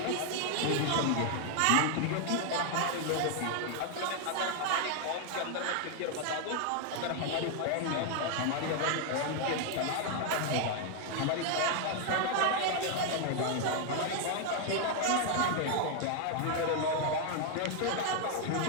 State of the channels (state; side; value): different; both; correlation 0.00